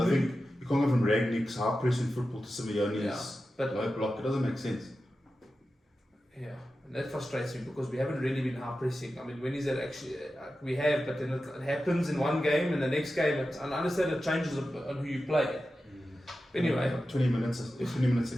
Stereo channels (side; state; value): both; normal; correlation 0.92